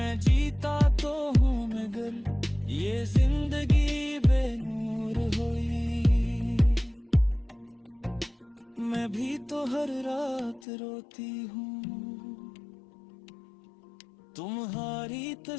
जीता तो हूँ मगर ये जिंदगी बेनूर हुई। मैं भी तो हर रात रोती हूँ, तुम्हारी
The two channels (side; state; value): right; drops out; at 10.6 s